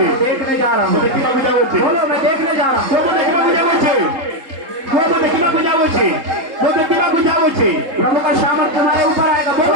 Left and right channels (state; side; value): late; left; 3.7 ms